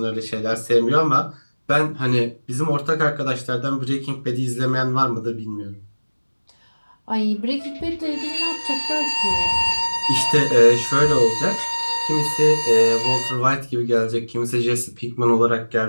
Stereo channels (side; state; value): both; inverted; correlation -1.00